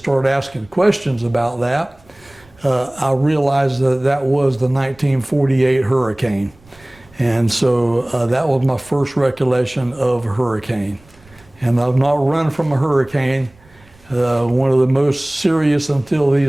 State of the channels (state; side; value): noise; right; rumble, 28 dB below the sound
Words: asking questions about that, I realized that was the 1948 hurricane. And so that was my first recollection of a hurricane. And I've not run from a hurricane. One of the most serious until